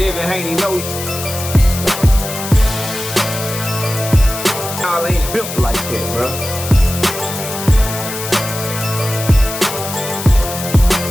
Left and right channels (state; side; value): noise; left; hiss, 8 dB below the sound